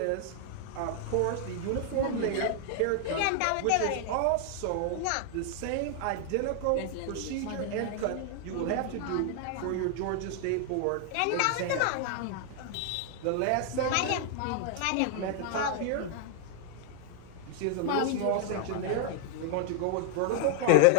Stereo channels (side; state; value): both; different; correlation 0.00